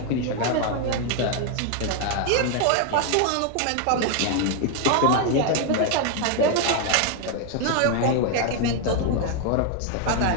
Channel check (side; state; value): both; different; correlation 0.01